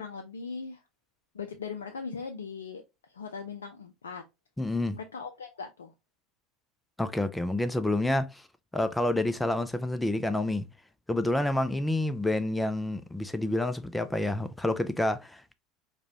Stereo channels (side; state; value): both; normal; correlation 0.83